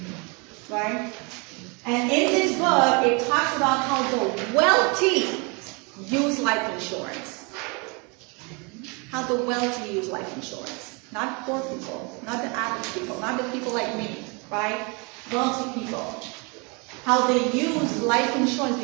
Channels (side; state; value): left; quieter; 31.1 dB